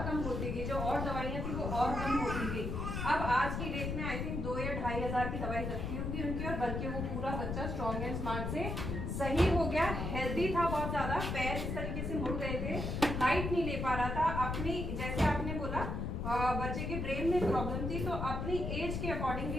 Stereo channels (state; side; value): noise; left; rumble, 2 dB below the sound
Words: कम होती गई, जो और दवाइयाँ थी वो और कम होती गई। अब आज की डेट में आई थिंक 2 या 2,500 की दवाई लगती होगी उनकी, और बल्कि वो पूरा बच्चा स्ट्रॉन्ग एंड स्मार्ट से सही हो गया, हेल्दी था बहुत ज्यादा, पैर इस तरीके से मुड़ गए थे, हाइट नहीं ले पा रहा था अपनी, जैसे आपने बोला बच्चे के ब्रेन में प्रॉब्लम थी, तो अपनी एज के अकॉर्डिंगली